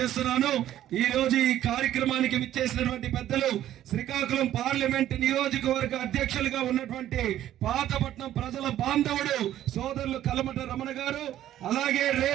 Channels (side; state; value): left; quieter; 12.3 dB